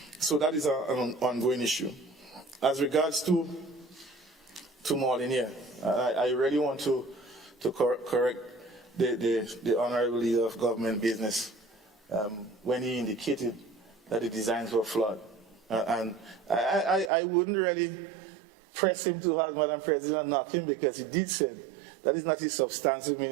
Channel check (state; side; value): drops out; left; at 17.1 s